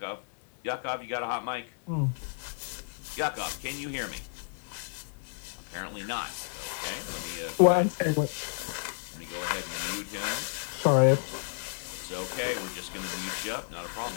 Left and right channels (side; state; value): right; silent; digital silence